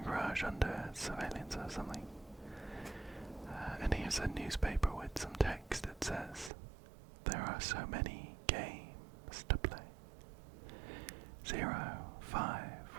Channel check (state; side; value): drops out; left; at 6.5 s